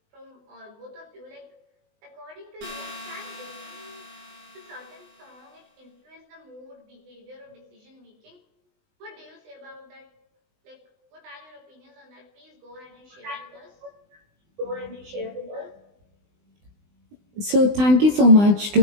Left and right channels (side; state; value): left; late; 20 ms